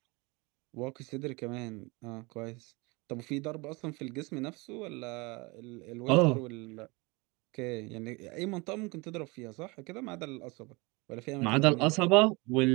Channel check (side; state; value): left; quieter; 26.4 dB